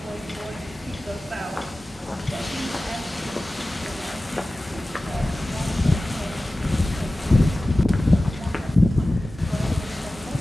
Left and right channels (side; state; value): both; normal; correlation 0.96